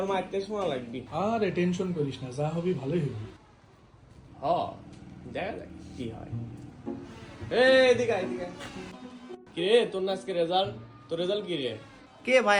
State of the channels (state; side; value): identical; both; correlation 1.00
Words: মারতে শোনা লাগবি। আরে টেনশন করিস না, যা হবি ভালোই হবি। হ, দেখা যাক কি হয়। এদিকে আয়, এদিকে আয়। কি রে তোর না আজকে রেজাল্ট? তোর রেজাল্ট কি রে? কে